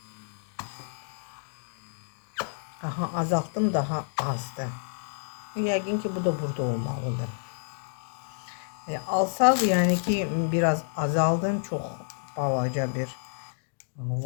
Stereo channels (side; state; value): right; silent; digital silence